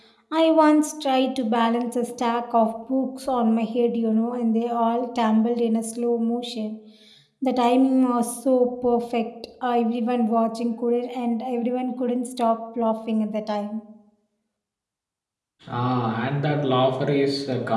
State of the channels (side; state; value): both; identical; correlation 1.00